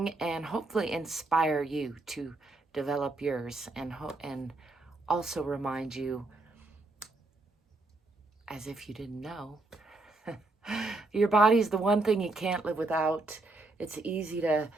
and hopefully inspire you to develop yours and also remind you, as if you didn't know, your body's the one thing you can't live without. It's easy to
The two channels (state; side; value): quieter; left; 3.0 dB